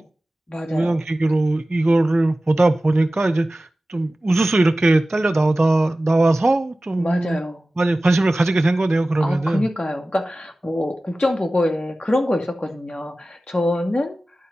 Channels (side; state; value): both; normal; correlation 0.96